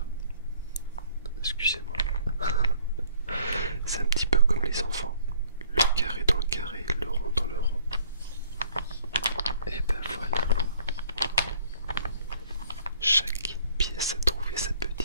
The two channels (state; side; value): inverted; both; correlation -0.59